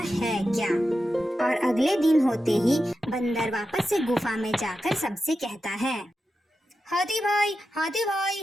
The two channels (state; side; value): normal; both; correlation 0.90